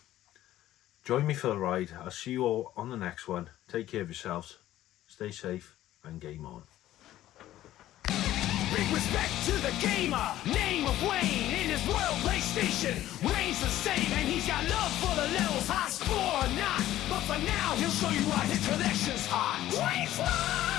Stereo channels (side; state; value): right; quieter; 13.9 dB